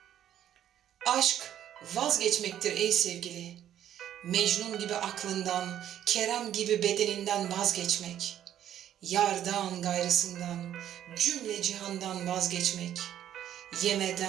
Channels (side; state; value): left; quieter; 11.0 dB